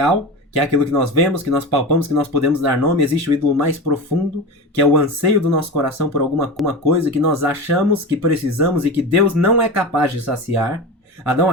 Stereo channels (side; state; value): both; normal; correlation 0.27